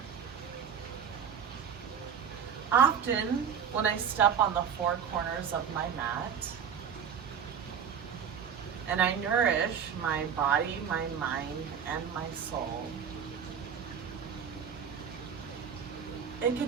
Often, when I step on the four corners of my mat, and I nourish my body, my mind, and my soul, it can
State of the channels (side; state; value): left; quieter; 7.5 dB